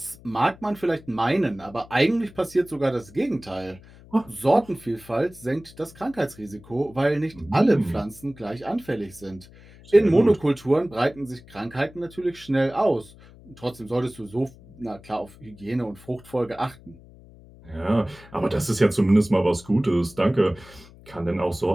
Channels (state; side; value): noise; left; hum, 22 dB below the sound